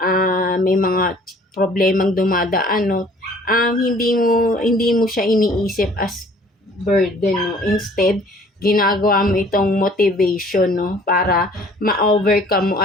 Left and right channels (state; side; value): normal; both; correlation 0.54